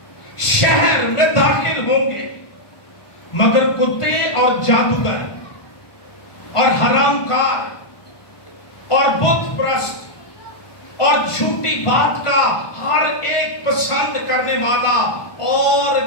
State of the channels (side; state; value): right; late; 1.5 ms